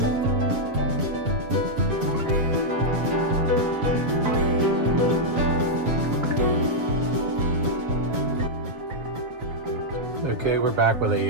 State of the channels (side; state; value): left; late; 7.3 ms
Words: Okay, we're back with